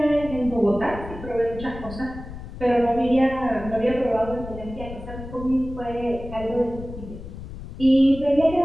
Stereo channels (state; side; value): noise; left; rumble, 12 dB below the sound